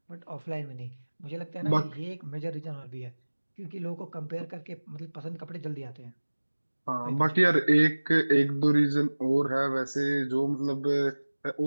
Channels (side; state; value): both; inverted; correlation -1.00